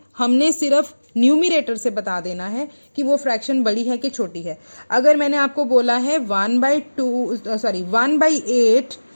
हमने सिर्फ न्यूमिरेटर से बता देना है कि वो फ्रैक्शन बड़ी है कि छोटी है। अगर मैंने आपको बोला है 1/8,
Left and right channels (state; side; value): inverted; both; correlation -1.00